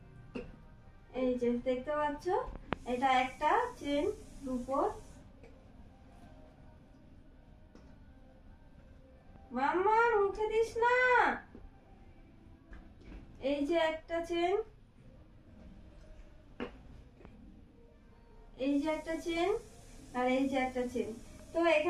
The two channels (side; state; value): both; identical; correlation 1.00